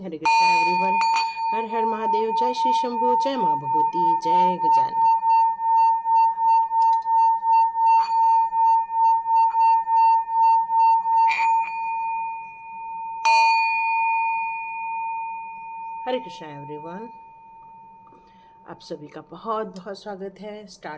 हरे कृष्णा एवरीवन। हर हर महादेव। जय श्री शंभू। जय माँ भगवती। जय गजानन। हरे कृष्णा एवरीवन। आप सभी का बहुत बहुत स्वागत है।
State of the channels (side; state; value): both; identical; correlation 1.00